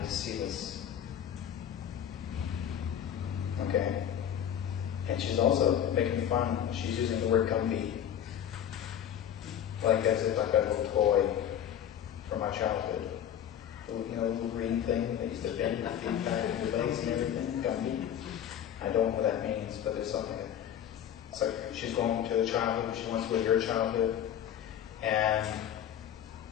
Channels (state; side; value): quieter; right; 9.9 dB